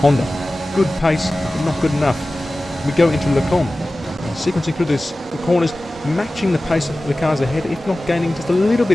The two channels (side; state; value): both; normal; correlation 0.96